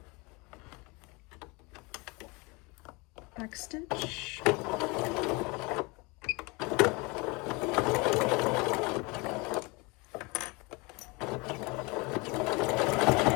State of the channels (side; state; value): right; quieter; 26.9 dB